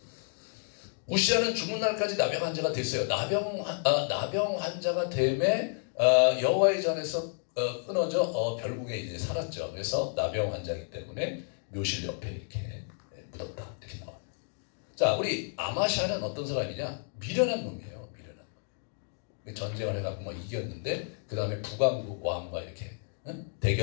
우시아는 죽는 날까지 나병 환자가 됐어요. 나병 환자가 됨에 여호와의 전에서 끊어져 결국에 이제 살았죠. 그래서 나병 환자이기 때문에 묘실 옆에 이렇게 묻었다 이렇게 나와요. 자, 우리 아마샤는 어떤 사람이냐? 미련한 놈이에요. 미련한 놈. 전쟁을 해갖고 막 이겼는데 그 다음에 북왕국 왕과 이렇게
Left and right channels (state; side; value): silent; right; 57 dB below the other